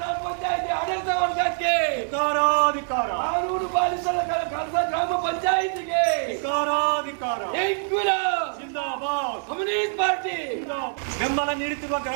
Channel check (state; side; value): silent; left; 62 dB below the other